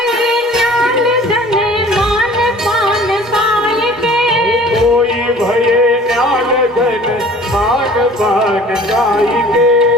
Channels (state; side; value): normal; both; correlation 0.48